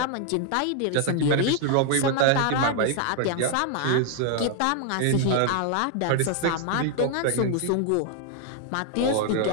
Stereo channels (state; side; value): different; both; correlation 0.00